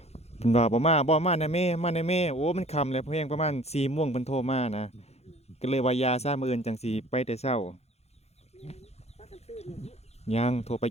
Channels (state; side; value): late; right; 0.31 ms